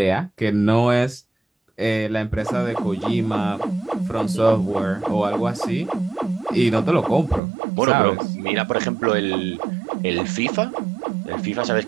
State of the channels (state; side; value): drops out; left; at 7.4 s